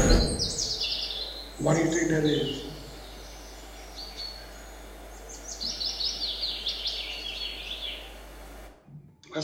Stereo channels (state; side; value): identical; both; correlation 1.00